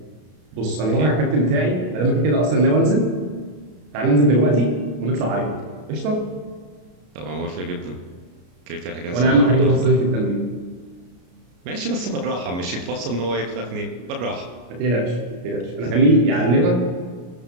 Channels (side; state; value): left; late; 33 ms